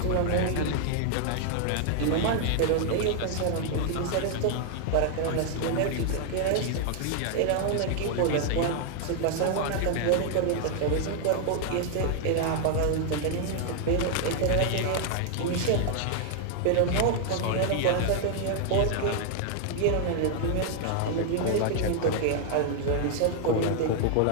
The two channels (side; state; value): both; different; correlation 0.00